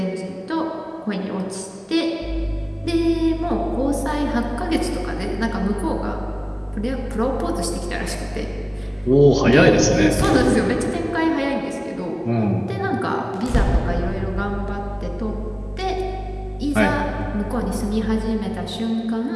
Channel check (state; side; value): identical; both; correlation 1.00